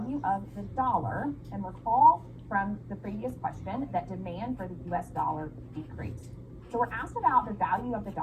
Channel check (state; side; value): identical; both; correlation 1.00